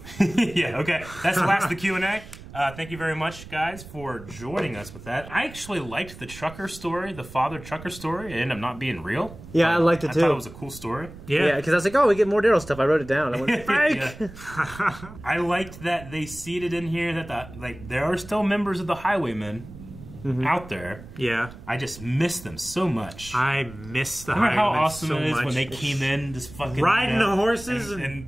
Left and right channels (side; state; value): right; noise; rumble, 16 dB below the sound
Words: Yeah, okay. That's the last of the Q&A. Thank you very much, guys, for joining us with that. I actually liked the trucker story, the father trucker story. It ended up not being real. Yeah, I liked it too. I thought it was a cool story. Yeah, because I was like, oh, we get more Daryl stuff. I wrote it down. I went, fake! I liked that they seeded in here that there are still members of the Highwaymen out there. Yeah. I just miss them so much. I miss the Highwaymen. Remember how awesome so it is much. when they came in, just fucking riding the horses,